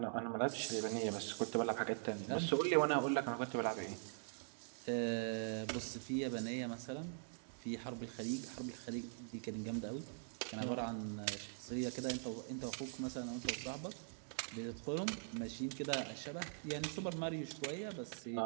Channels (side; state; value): left; silent; digital silence